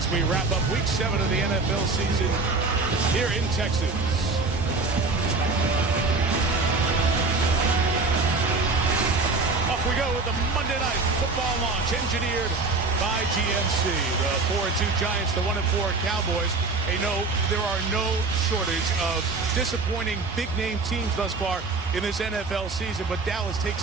we wrap up Week 7 of the NFL season here in Texas. Off we go with the Monday Night Football launch, engineered by GMC. The 4-2 Giants, the 1-4 Cowboys. Hey, no, there are no shortage of disappointing big-name teams thus far in this NFL season, but Dallas takes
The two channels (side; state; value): left; quieter; 3.7 dB